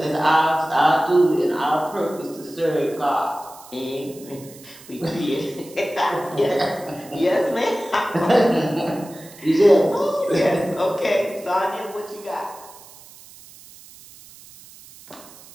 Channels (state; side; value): noise; right; hiss, 21 dB below the sound